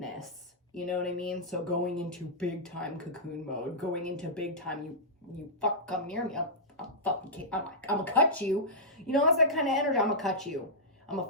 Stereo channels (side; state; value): both; normal; correlation -0.12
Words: You know what I mean? So going into big time cocoon mode, going into big time, you fuck come near me, I'm gonna cut you. You know, that's that kind of energy. I'm gonna cut you. I'm gonna